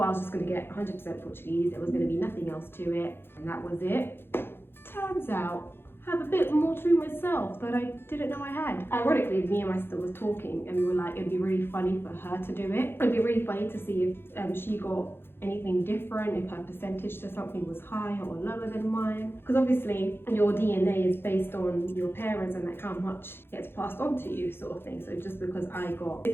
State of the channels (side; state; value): right; late; 0.11 ms